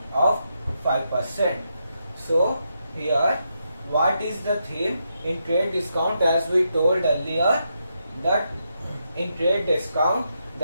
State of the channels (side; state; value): both; inverted; correlation -0.82